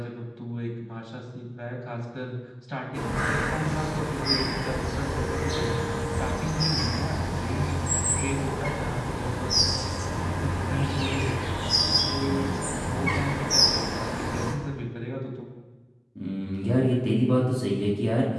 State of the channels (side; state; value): both; identical; correlation 1.00